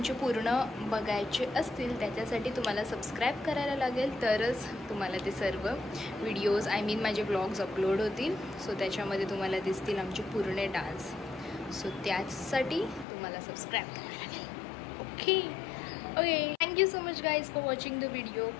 पूर्ण बघायचे असतील त्याच्यासाठी तुम्हाला सबस्क्राईब करायला लागेल, तरच तुम्हाला ते सर्व व्हिडिओज माझे ब्लॉग्स अपलोड होतील. सो त्याच्यामध्ये तुम्हाला दिसतील आमचे पूर्ण डान्स. सो त्यासाठी तुम्हाला सबस्क्राईब करायला लागेल. Okay okay. Thank you so much guys for watching the video.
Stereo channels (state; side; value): drops out; right; at 13.1 s